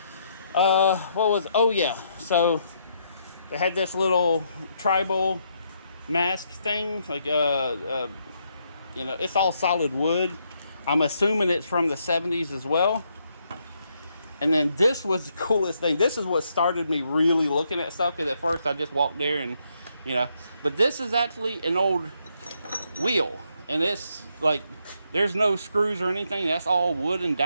Oh yeah. So they had this little tribal mask thing, like you know, it's all solid wood. I'm assuming it's from the 70s as well. And then this was the coolest thing. This is what started me really looking at stuff, because at first I just walked there and, you know, but this is actually an old wheel, and it's like there's no screws or anything. That's all wood and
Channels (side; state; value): both; inverted; correlation -0.75